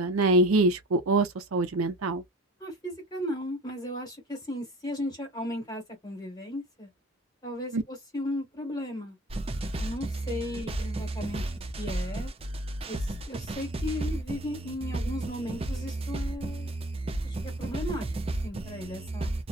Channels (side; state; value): both; normal; correlation 0.42